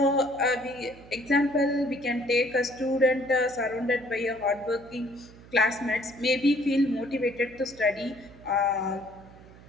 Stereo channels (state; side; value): noise; right; hum, 21 dB below the sound